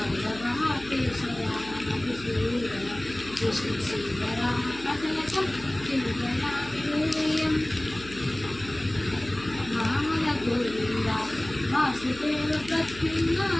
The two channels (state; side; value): noise; left; hum, 17 dB below the sound